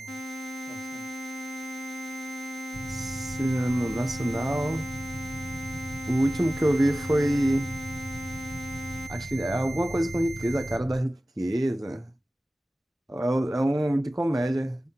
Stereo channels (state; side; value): normal; both; correlation 0.96